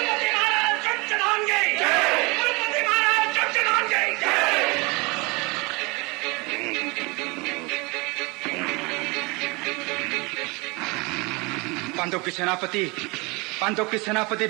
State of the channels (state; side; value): quieter; left; 26.8 dB